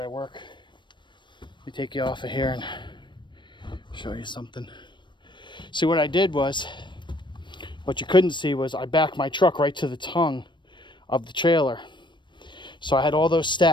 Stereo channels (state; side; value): late; right; 0.22 ms